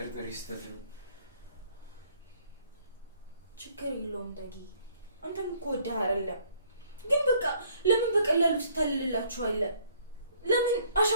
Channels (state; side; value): inverted; both; correlation -0.62